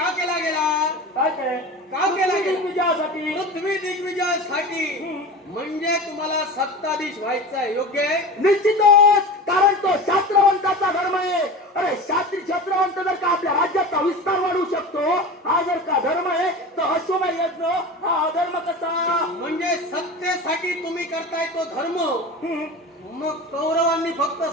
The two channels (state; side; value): normal; both; correlation 0.31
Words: केला गेला? काय ते? का केला गेला? विजयासाठी. पृथ्वी दिग्विजयासाठी. म्हणजे तुम्हाला सत्ताधीश व्हायचं आहे. योग्य आहे? निश्चितच. कारण तो शास्त्रवंताचा धर्म आहे. अरे शास्त्रवंत जर का आपल्या राज्याचा विस्तार वाढवू शकतो, हा जर का धर्म आहे, तर अश्वमेध यज्ञ हा अधर्म कसा? म्हणजे सत्तेसाठी तुम्ही करताय तो धर्म. मग कौरवांनी फक्त